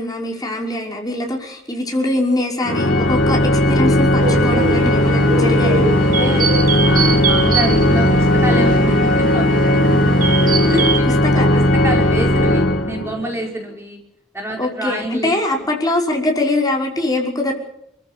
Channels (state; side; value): normal; both; correlation 0.52